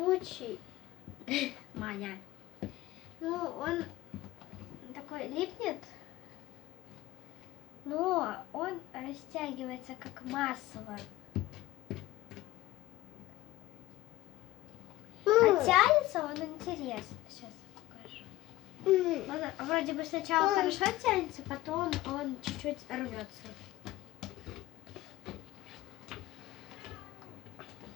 Маня. Ну, он такой липнет, но он растягивается как масло. А тянется он интересно. Сейчас покажу. Он вроде бы сначала хорошо тянется, потом он чуть-чуть рвется.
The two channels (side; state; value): right; quieter; 17.0 dB